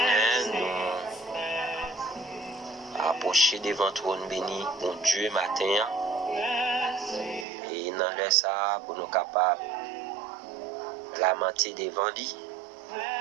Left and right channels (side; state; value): left; drops out; at 7.5 s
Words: nous approcher devant trône béni, bon Dieu, matin, et dans le ça pour nous capables lamenter devant lui,